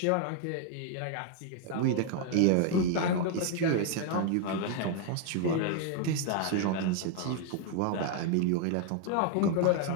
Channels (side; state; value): both; different; correlation 0.00